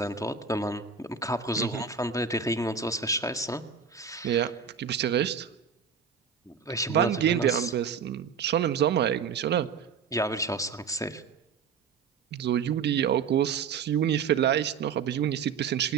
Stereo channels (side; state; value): left; quieter; 6.3 dB